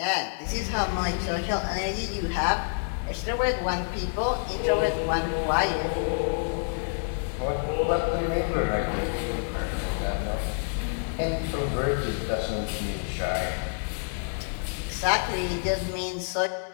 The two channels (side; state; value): right; silent; 57 dB below the other